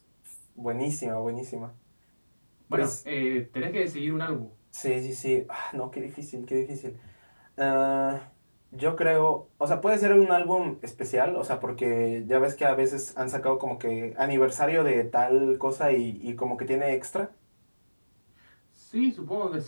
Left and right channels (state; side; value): inverted; both; correlation -1.00